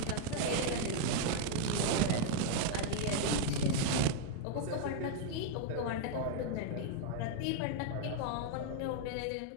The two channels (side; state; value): both; different; correlation 0.00